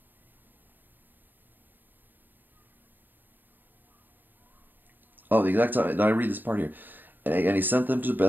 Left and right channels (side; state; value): left; late; 0.091 ms